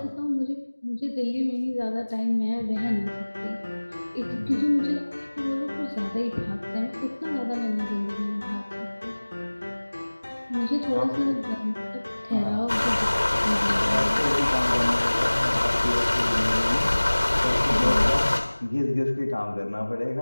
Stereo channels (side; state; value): both; inverted; correlation -1.00